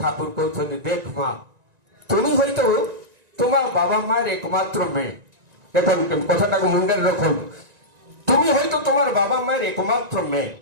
ଠାକୁର କହୁଛନ୍ତି, ଦେଖ ମା, তুমি হয়তো তোমার বাবা মায়ের একমাত্র মেয়ে। দেখুন কথাটাকে মুন্ডের রাখুন, তুমি হয়তো তোমার বাবা মায়ের একমাত্র মেয়ে,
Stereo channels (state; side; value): late; left; 1.9 ms